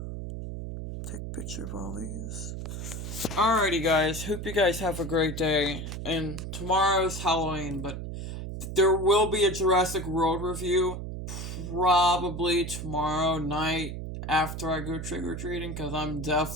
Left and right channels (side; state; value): right; noise; hum, 6 dB below the sound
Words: Take a picture of all these. Alrighty, guys. Hope you guys have a great day. And tomorrow's Halloween, but there will be a Jurassic World review probably tomorrow night after I go trick-or-treating, because I'm